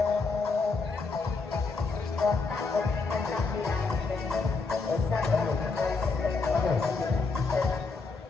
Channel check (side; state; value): right; quieter; 4.2 dB